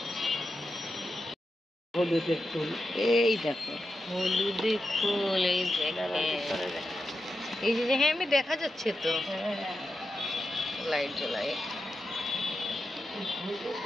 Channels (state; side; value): normal; both; correlation 0.89